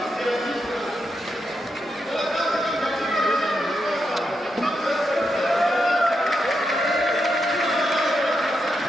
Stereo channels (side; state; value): both; normal; correlation 0.84